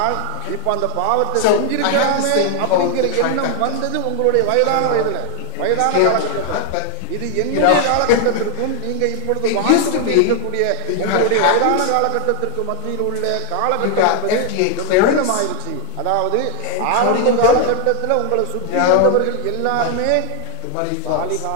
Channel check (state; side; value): different; both; correlation 0.01